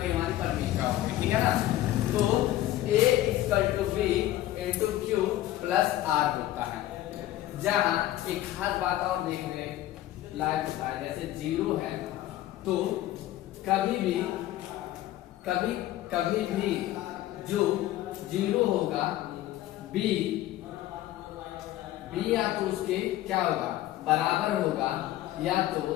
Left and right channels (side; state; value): right; quieter; 14.4 dB